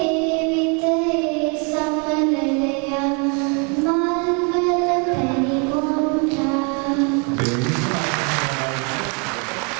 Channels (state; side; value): quieter; left; 35.1 dB